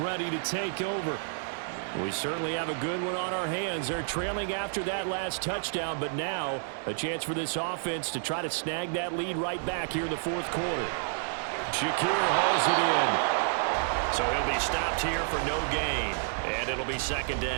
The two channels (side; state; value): left; silent; digital silence